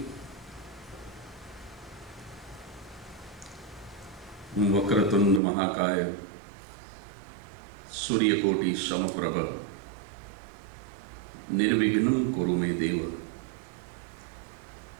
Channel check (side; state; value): left; drops out; at 5.4 s